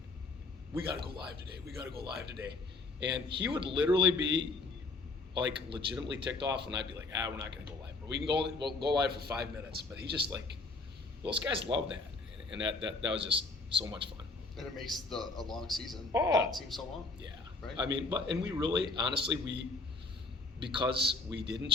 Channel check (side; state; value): right; quieter; 3.5 dB